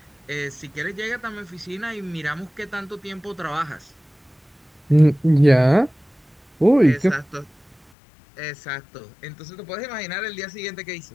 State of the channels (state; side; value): drops out; right; at 7.9 s